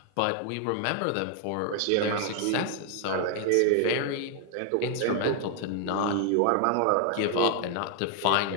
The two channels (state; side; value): different; both; correlation 0.00